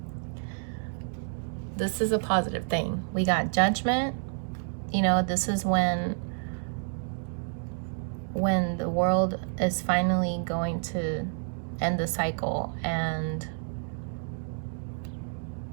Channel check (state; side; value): silent; left; 58 dB below the other